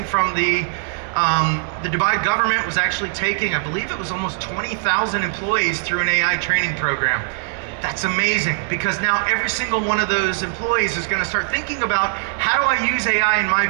from the Dubai government was actually taking, I believe it was almost 20,000 employees through an AI training program. That's amazing, because now every single one of those employees is going to start thinking about, how do I use AI in my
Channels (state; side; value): silent; left; 65 dB below the other